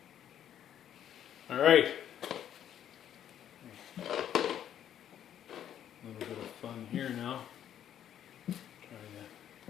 All right. A little bit of fun here now. Trying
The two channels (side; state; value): right; quieter; 10.3 dB